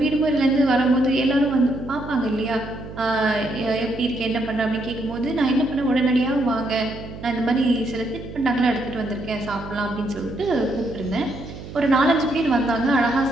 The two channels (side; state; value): right; noise; hum, 12 dB below the sound